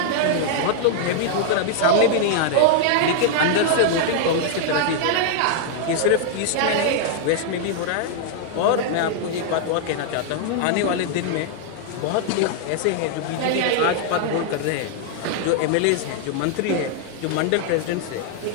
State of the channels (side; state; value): both; different; correlation -0.01